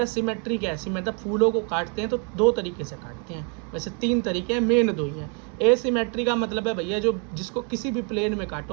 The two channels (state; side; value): quieter; left; 38.3 dB